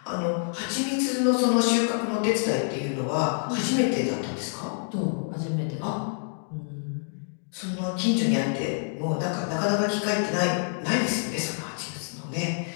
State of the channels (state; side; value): silent; right; digital silence